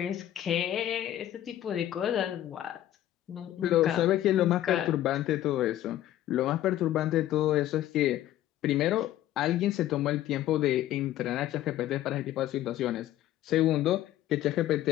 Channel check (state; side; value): quieter; right; 13.1 dB